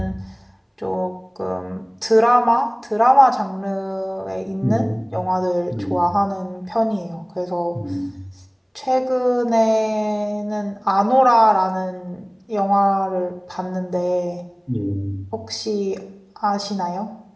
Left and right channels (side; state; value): both; identical; correlation 1.00